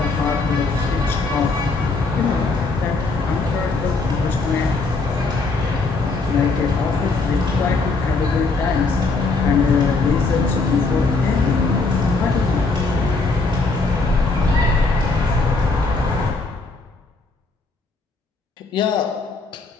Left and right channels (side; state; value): right; quieter; 3.8 dB